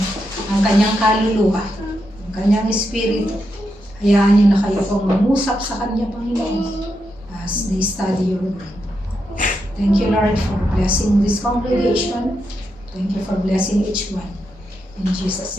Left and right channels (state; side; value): normal; both; correlation 0.84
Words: ang kanyang kaluluwa, ang kanyang espiritu, hayaan niyo na kayo pong mangusap sa kanya, Panginoon, as they study your word. Thank you, Lord, for blessing this congregation. Thank you for blessing each one. In Jesus'